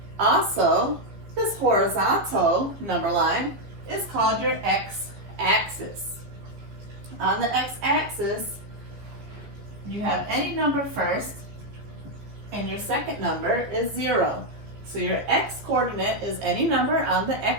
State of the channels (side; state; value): left; late; 14 ms